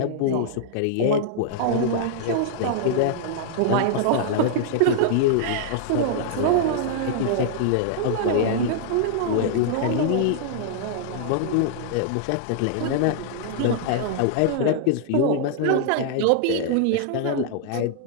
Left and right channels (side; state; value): both; different; correlation -0.01